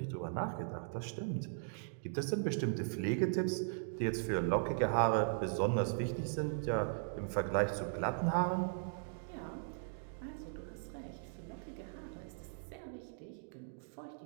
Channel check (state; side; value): silent; left; digital silence